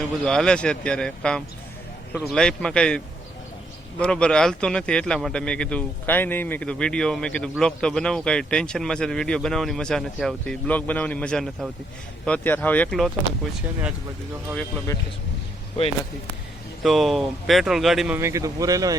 એવું બધું હાલે છે અત્યારે કામ. થોડુંક લાઈફમાં કંઈ બરોબર હાલતું નથી એટલા માટે મેં કીધું કાંઈ નહીં. મેં કીધું વિડીયો, મેં કીધું બ્લોગ તો બનાવું. કાંઈ ટેન્શનમાં છે તો વિડીયો બનાવવાની મજા નથી આવતી, બ્લોગ બનાવવાની મજા નથી આવતી. તો અત્યારે હાવ એકલો હતો ને, કોઈ છે નહીં આજુબાજુ, તો હાવ એકલો બેઠો છું, કોઈ નથી. તો પેટ્રોલ ગાડીમાં મેં કીધું પૂરેલો,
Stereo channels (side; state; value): both; normal; correlation 0.73